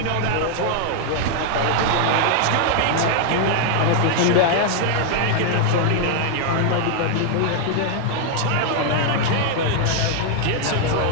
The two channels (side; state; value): both; different; correlation 0.00